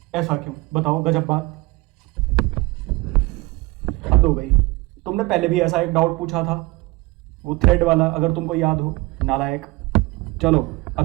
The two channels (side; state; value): left; quieter; 23.2 dB